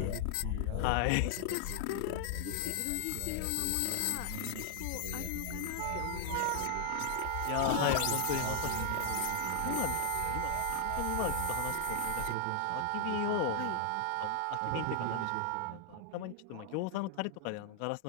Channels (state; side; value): different; both; correlation 0.00